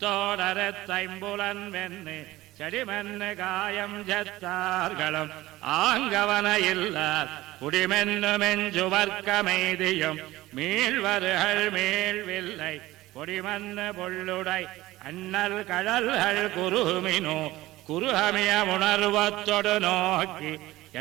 தைம்புலன் வெண்ணு செடிமென்னு காயம் ஜத்தார்களும் ஆங்கவனையில்லார் குடிமென்னு மெஞ்சுவர்க்கமெய்தியும் மீள்வர்கள் மீள்வில்லை கொடிமன்னு பொள்ளுடை அண்ணல் கடல்கள் குருமினோ குருகமிய உணர்வத்தொடு நோக்கி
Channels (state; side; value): quieter; left; 17.5 dB